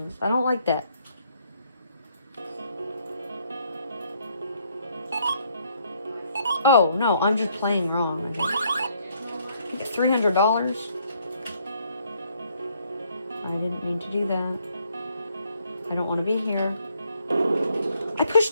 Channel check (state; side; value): inverted; both; correlation -0.69